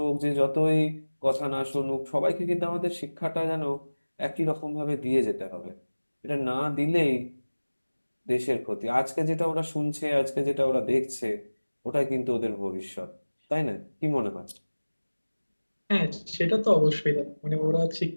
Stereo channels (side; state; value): both; inverted; correlation -1.00